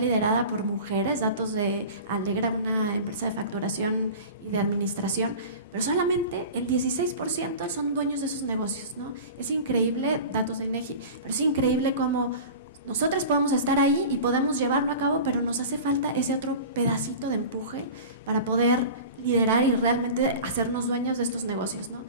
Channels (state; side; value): inverted; both; correlation -0.35